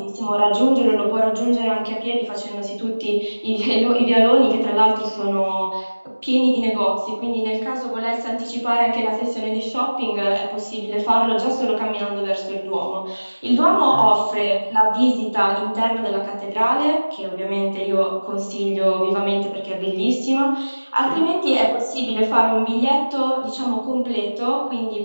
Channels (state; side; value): inverted; both; correlation -1.00